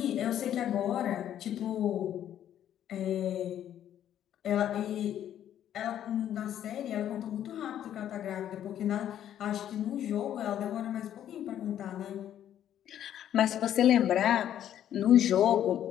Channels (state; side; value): quieter; right; 10.8 dB